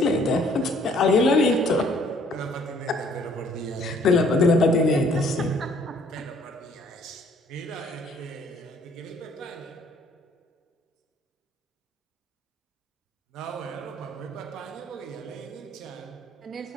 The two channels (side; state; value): both; normal; correlation 0.60